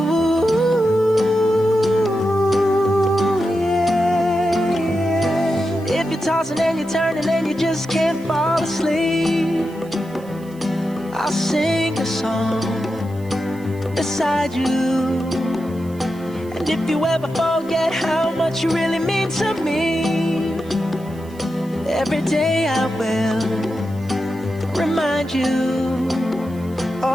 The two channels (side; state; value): right; noise; hiss, 26 dB below the sound